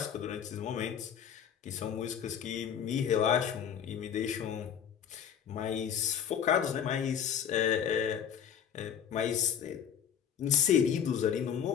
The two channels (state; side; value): quieter; right; 8.5 dB